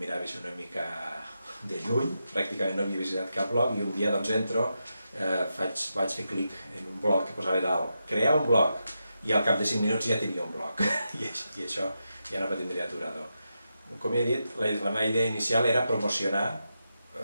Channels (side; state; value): both; inverted; correlation -0.87